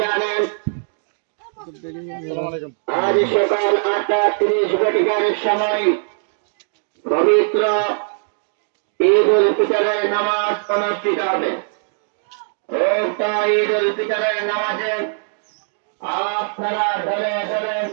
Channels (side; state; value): left; silent; 66 dB below the other